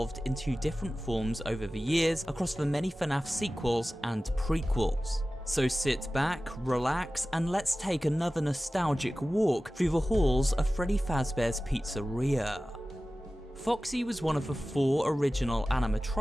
into different forms over the years across the many FNaF sequels and prequels. So sit back, relax, and let's take another nostalgic walk through the halls of Freddy Fazbear's Pizzeria. Foxy was one of the 4 original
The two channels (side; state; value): both; normal; correlation 0.96